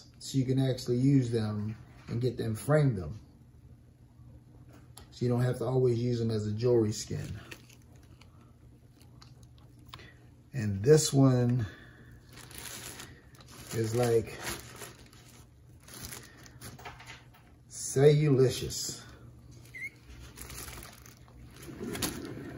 so you can actually use them and get them, frame them. So you don't have to always use them as a jewelry skin. And this one is like cellulicious.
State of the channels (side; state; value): both; identical; correlation 1.00